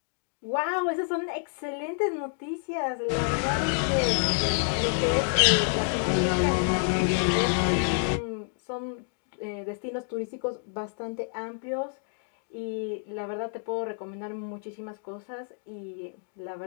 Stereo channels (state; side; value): silent; right; 58 dB below the other